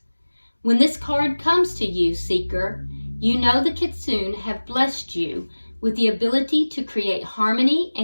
When this card comes to you, seeker, you know the Kitsune have blessed you with the ability to create harmony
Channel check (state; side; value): inverted; both; correlation -1.00